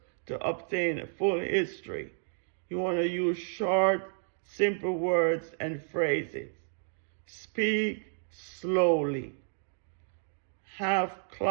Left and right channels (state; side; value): silent; left; digital silence